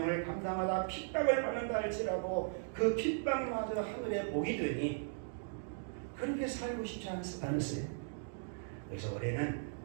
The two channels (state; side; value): silent; left; digital silence